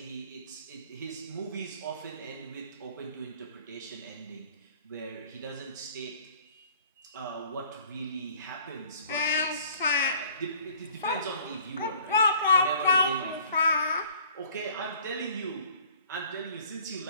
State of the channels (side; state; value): both; inverted; correlation -0.53